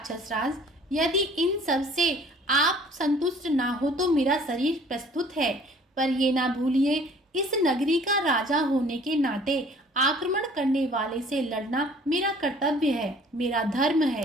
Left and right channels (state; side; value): normal; both; correlation 0.53